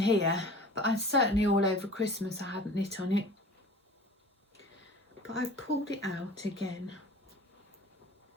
but I certainly all over Christmas I hadn't knit on it. But I've pulled it out again.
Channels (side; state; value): both; normal; correlation 0.42